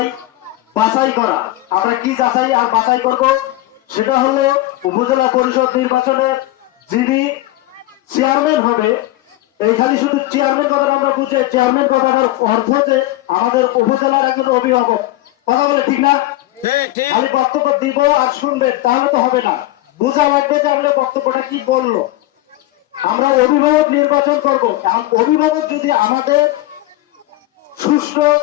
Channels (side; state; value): right; quieter; 16.9 dB